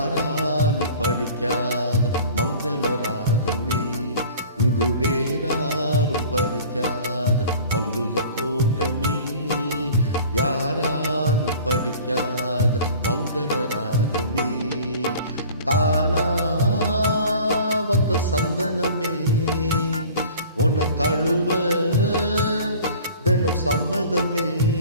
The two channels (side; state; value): both; inverted; correlation -0.45